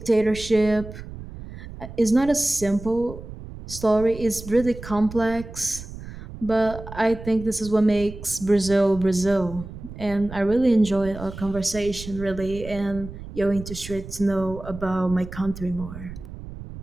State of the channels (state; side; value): noise; right; rumble, 12 dB below the sound